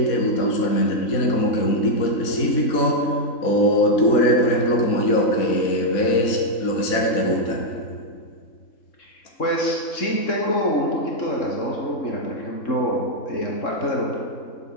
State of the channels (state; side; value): late; right; 4.1 ms